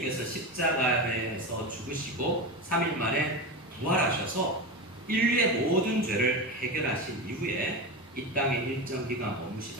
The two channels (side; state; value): both; normal; correlation 0.21